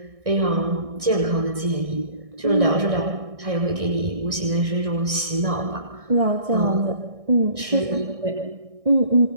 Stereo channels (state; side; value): late; left; 1.6 ms